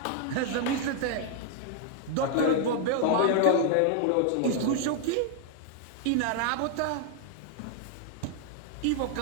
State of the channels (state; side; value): different; both; correlation 0.00